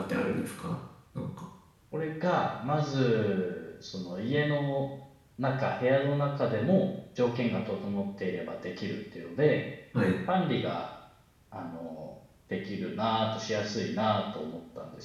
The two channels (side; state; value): both; identical; correlation 1.00